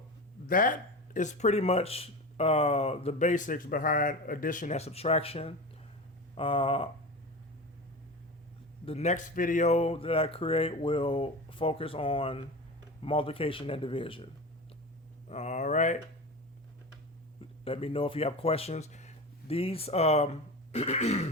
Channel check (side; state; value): both; normal; correlation 0.28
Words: that is pretty much the basics behind addition and subtraction. The next video that I create will focus on multiplication and division. All right. Let me know if you have questions. These